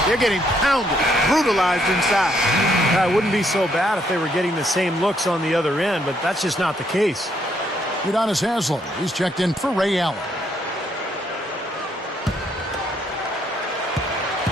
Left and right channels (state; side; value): normal; both; correlation 0.71